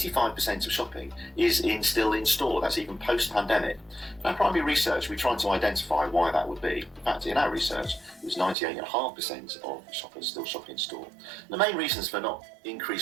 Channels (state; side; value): drops out; left; at 8.6 s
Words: of shopping is still in store. That's even post-pandemic. In our primary research, we tried to identify why that would be. In fact, in our research, it was 98.5% of shoppers still shop in store. The main reasons for not